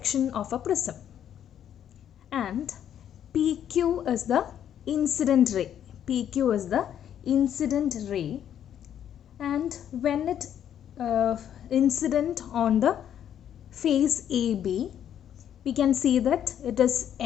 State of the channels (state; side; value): quieter; right; 9.8 dB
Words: of a prism and PQ is the incident ray. PQ is the incident ray, and when it incident on the face AB, we can see that it is